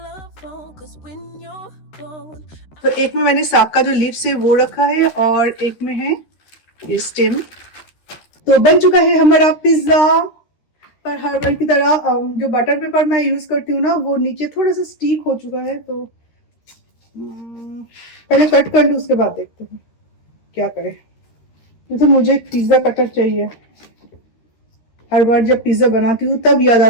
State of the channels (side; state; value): right; late; 13 ms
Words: cause when you're gone. तो एक में मैंने साग का जो लीव्स है वो रखा है, और एक में है ये स्टेम। तो बन चुका है हमारा पिज्जा। पर हर बार की तरह जो बटर पेपर मैं यूज करती हूँ ना, वो नीचे थोड़ा सा स्टिक हो चुका है, तो पहले कट कर लूँ, उसके बाद देखते हैं क्या करें। तो मुझे एक पिज्जा कटर चाहिए। हर बार जब पिज्जा बनाती हूँ तब याद